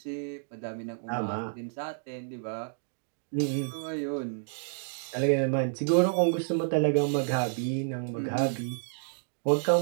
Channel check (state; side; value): silent; left; digital silence